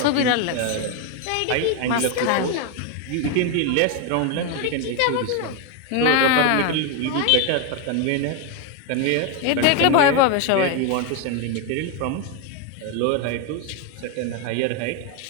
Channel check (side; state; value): both; different; correlation 0.02